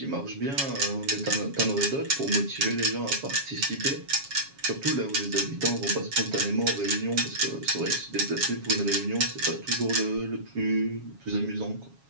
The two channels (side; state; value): left; late; 7.3 ms